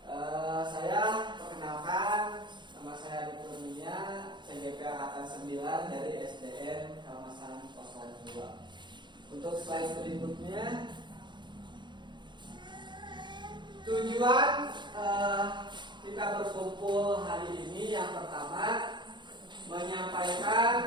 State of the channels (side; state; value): left; late; 0.22 ms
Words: Saya perkenalkan, nama saya Adi Kurnia, CGP Angkatan 9 dari SDN Kalmasan 02. Untuk slide berikutnya, tujuan kita berkumpul hari ini yang pertama